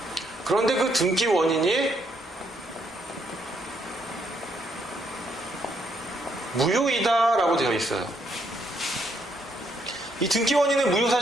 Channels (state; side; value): normal; both; correlation 0.73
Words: 그런데 그 등기 원인이 무효이다라고 되어 있어요. 이 등기 원인의 무효